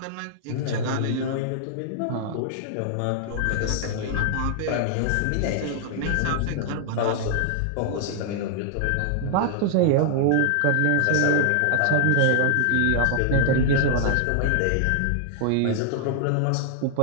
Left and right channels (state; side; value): different; both; correlation -0.01